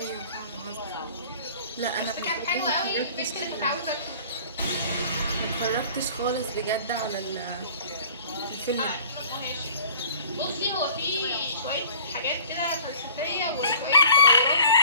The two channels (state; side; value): inverted; both; correlation -0.49